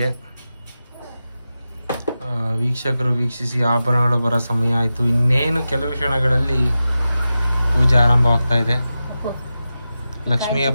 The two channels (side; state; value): both; inverted; correlation -0.93